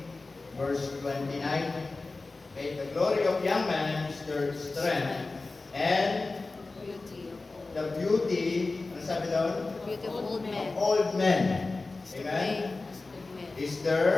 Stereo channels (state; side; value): quieter; right; 3.5 dB